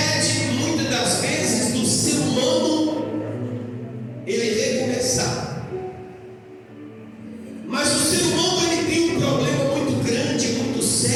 muitas das vezes, do ser humano ele recomeçar. Mas o ser humano ele tem um problema muito grande, muito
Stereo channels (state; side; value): identical; both; correlation 1.00